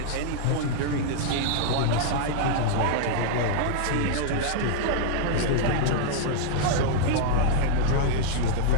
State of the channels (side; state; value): both; different; correlation -0.01